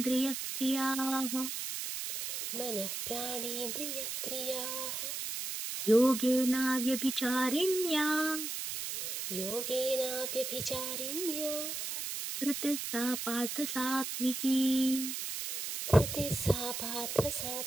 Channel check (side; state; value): right; noise; hiss, 4 dB below the sound